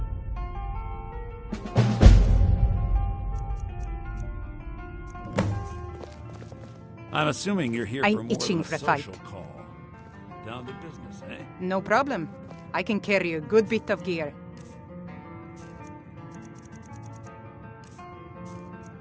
I'm assuming you're here for more itching than for a a fight. social call. Down to business, eh? No problem. I can carry a good bit of gear.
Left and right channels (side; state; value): both; identical; correlation 1.00